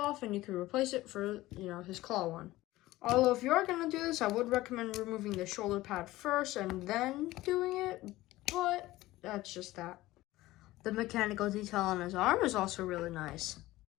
and you can replace it for, his claw one. Although if you are going to do this, I would recommend removing the shoulder pad first and then doing it, but that's just that. The mechanical detail on his arm is also really nice.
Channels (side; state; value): right; quieter; 17.4 dB